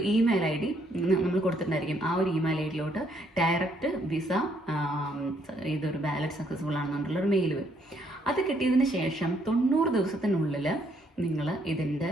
ഇമെയിൽ ID നമ്മൾ കൊടുത്തിട്ടുണ്ടായിരിക്കും. ആ ഒരു ഇമെയിൽ IDയിലോട്ട് ഡയറക്റ്റ് വിസ ഇതൊരു ബാലറ്റ് സക്സസ്ഫുൾ ആണെന്നുള്ളൊരു മെയിൽ വരും. അത് കിട്ടിയതിന് ശേഷം 90 ദിവസത്തിനുള്ളിൽ നിങ്ങൾ ഇതിൻ്റെ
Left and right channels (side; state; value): both; normal; correlation 0.70